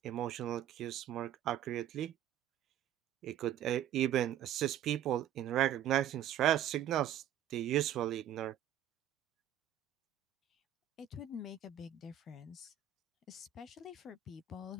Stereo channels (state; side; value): quieter; left; 10.8 dB